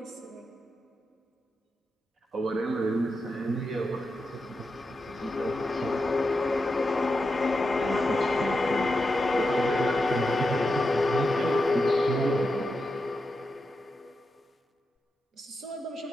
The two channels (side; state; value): both; normal; correlation 0.88